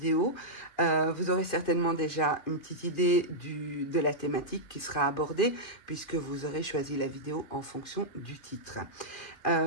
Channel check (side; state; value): right; late; 2.5 ms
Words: Vous aurez certainement déjà une petite idée de la thématique qui sera abordée puisque vous aurez choisi la vidéo en fonction du titre.